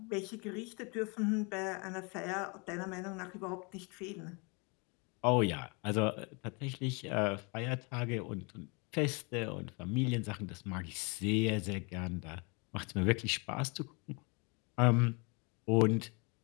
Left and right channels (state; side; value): quieter; right; 31.4 dB